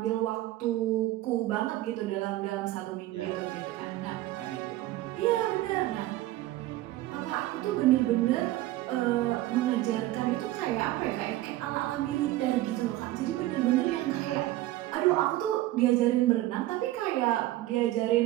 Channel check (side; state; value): left; quieter; 16.2 dB